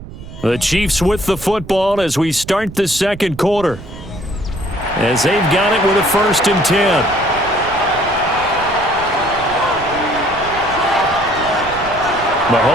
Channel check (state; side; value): noise; right; rumble, 14 dB below the sound